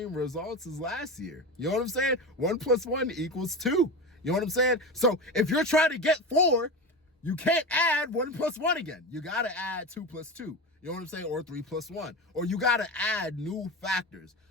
results as last year. You know what I'm saying? 1 + 1 = 2. You know what I'm saying? So if you're trying to get 4, you can't add 1 + 1 again. You got to add 2 + 2. You know what I'm saying? Or 3 + 1. Or you got to add new factors,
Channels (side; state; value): both; normal; correlation 0.24